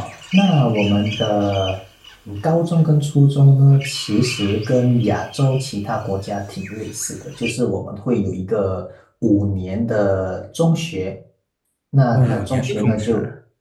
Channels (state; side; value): identical; both; correlation 1.00